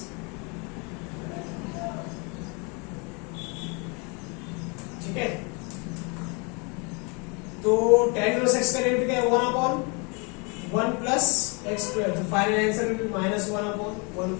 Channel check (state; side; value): quieter; right; 32.1 dB